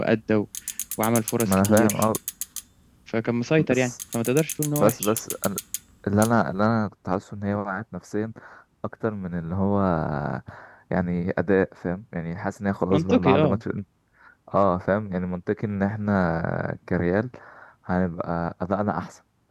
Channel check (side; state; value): both; identical; correlation 1.00